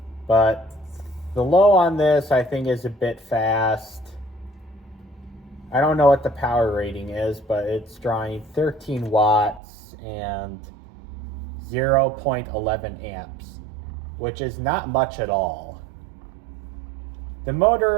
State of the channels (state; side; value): drops out; left; at 9.6 s